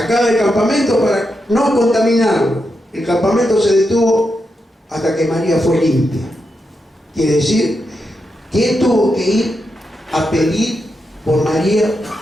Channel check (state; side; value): normal; both; correlation 0.85